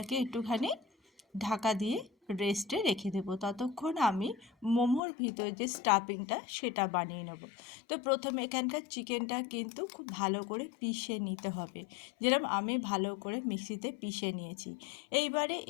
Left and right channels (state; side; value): drops out; right; at 5.0 s